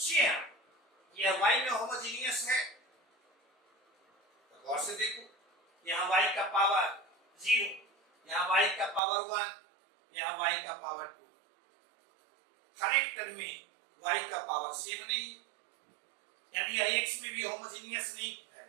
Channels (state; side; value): drops out; left; at 9.0 s